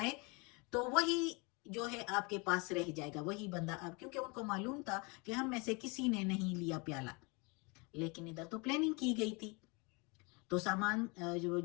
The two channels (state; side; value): quieter; right; 29.5 dB